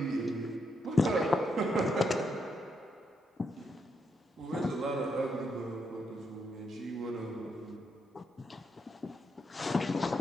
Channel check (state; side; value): normal; both; correlation 0.79